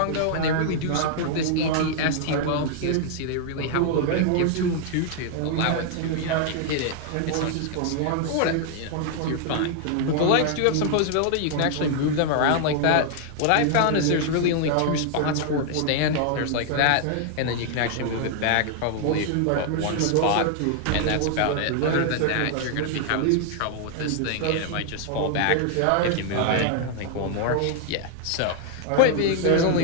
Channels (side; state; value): both; different; correlation 0.00